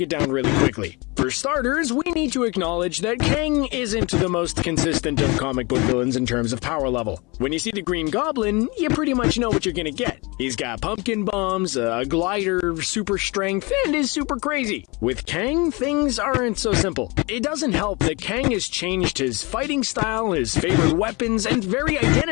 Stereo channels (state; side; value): quieter; right; 26.7 dB